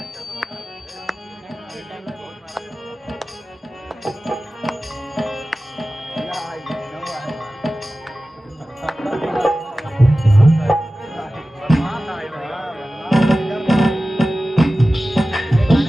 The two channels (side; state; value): both; normal; correlation 0.96